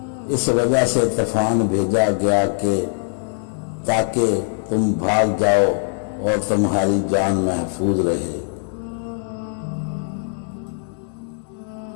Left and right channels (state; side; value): silent; right; 65 dB below the other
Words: اس وجہ سے طوفان بھیجا گیا کہ تاکہ تم بھاگ جاؤ اور تمہاری جان محفوظ رہے۔